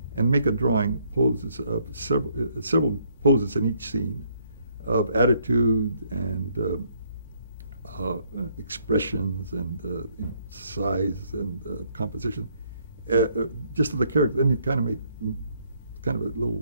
and make a drawing, poses of several poses in each scene of attitude and expressions and size and composition, just of the character. Then you kind of made kind of a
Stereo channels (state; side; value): inverted; both; correlation -0.68